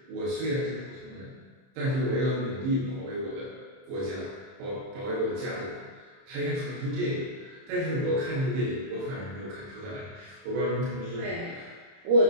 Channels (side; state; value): left; late; 30 ms